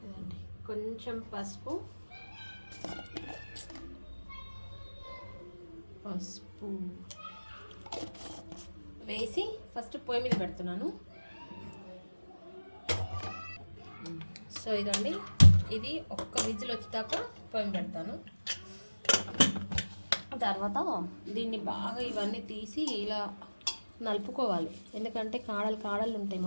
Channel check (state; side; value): inverted; both; correlation -1.00